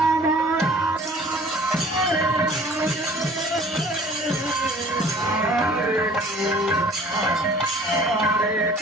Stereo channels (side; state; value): both; normal; correlation 0.50